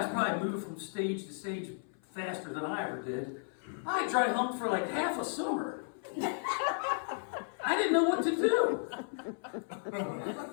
probably moved from stage to stage faster than I ever did. I dry humped for like half a summer. I didn't know what to do.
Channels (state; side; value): silent; right; 55 dB below the other